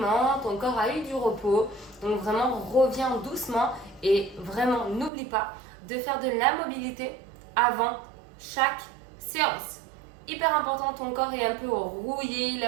ton corps a eu du repos, donc vraiment reviens doucement et vraiment n'oublie pas de faire de la mobilité avant chaque séance. Hyper important, ton corps est un peu rouillé, il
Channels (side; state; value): left; drops out; at 5.1 s